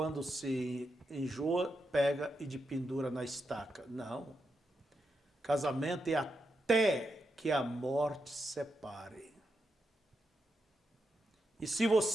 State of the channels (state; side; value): normal; both; correlation 0.85